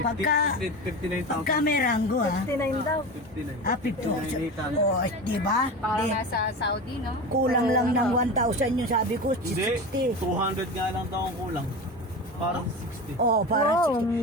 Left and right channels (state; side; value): normal; both; correlation 0.27